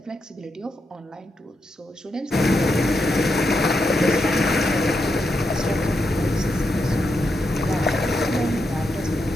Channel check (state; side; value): normal; both; correlation 0.84